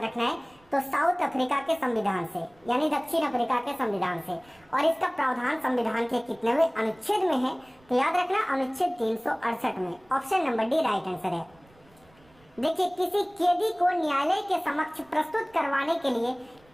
रखना है। तो साउथ अफ्रीका के संविधान से, यानी दक्षिण अफ्रीका के संविधान से। और इसका प्रावधान संविधान के कितनेवें अनुच्छेद में है? तो याद रखना अनुच्छेद 368 में। Option number D right answer है। देखिए, किसी कैदी को न्यायालय के समक्ष प्रस्तुत करवाने के लिए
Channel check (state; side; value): noise; right; rumble, 30 dB below the sound